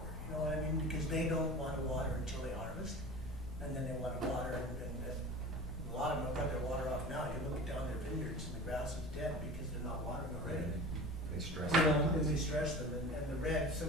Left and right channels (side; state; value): both; normal; correlation 0.36